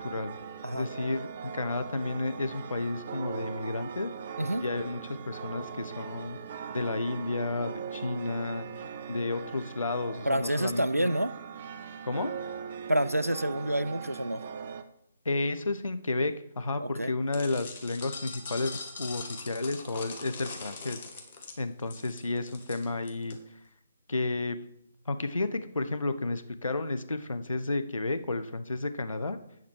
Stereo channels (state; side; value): inverted; both; correlation -0.83